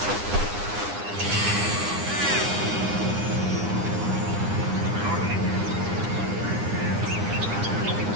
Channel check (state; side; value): late; left; 9.8 ms